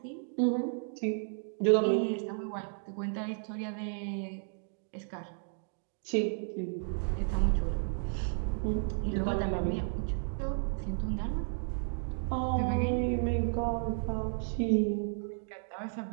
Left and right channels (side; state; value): left; silent; digital silence